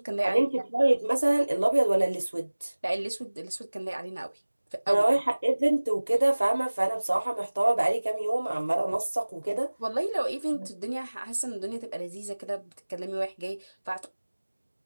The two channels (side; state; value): both; inverted; correlation -1.00